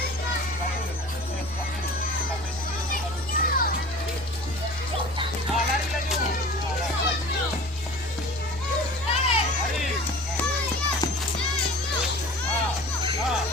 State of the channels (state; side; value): normal; both; correlation 0.41